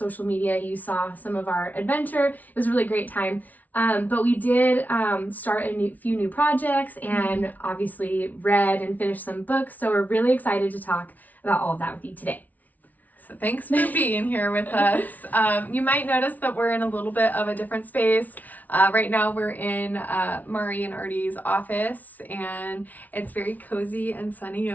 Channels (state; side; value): late; right; 0.076 ms